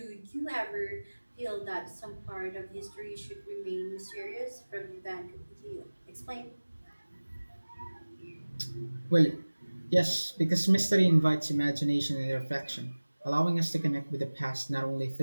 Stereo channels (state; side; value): inverted; both; correlation -1.00